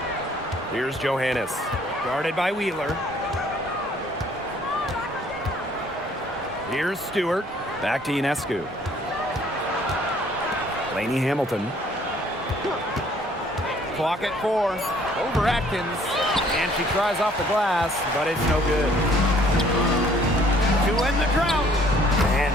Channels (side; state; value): both; normal; correlation 0.60